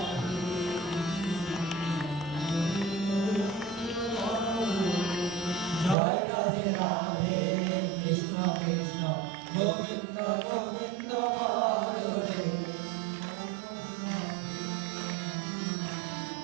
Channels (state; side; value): drops out; left; at 6.0 s